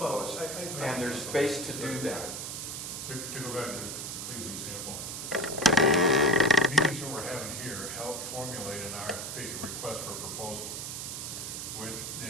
And there's space to do that. To go back to Cleve's example, meetings that we're having here help formulate an RFP, a request for a proposal, which then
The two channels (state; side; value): noise; right; hiss, 5 dB below the sound